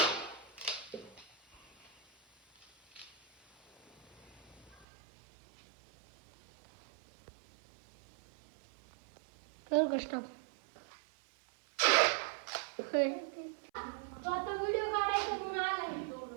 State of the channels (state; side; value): drops out; left; at 4.9 s